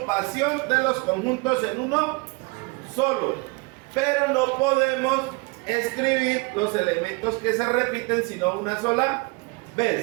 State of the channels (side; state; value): left; quieter; 28.6 dB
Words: de los conjuntos en uno solo, pero no podemos escribir los elementos que se repiten sino una sola